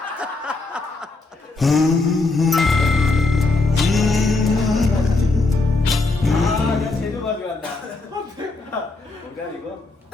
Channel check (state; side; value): quieter; right; 3.5 dB